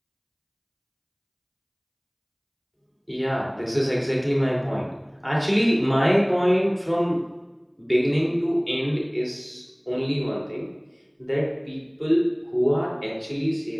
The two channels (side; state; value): both; identical; correlation 1.00